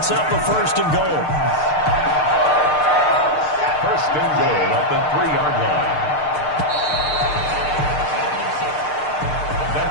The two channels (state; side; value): late; right; 6.6 ms